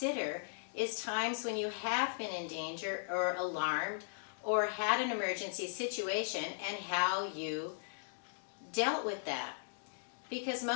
is times when you have been in danger or alarmed or had an emergency situation and how you dealt with that. Because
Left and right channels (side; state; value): right; silent; digital silence